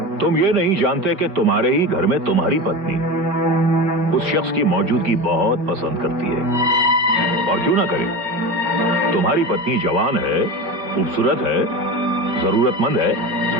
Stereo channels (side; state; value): left; late; 5.2 ms